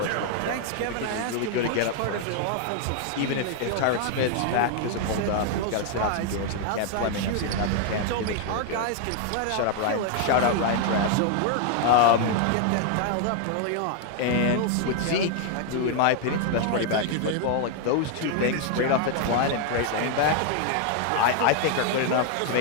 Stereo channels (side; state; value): both; different; correlation 0.00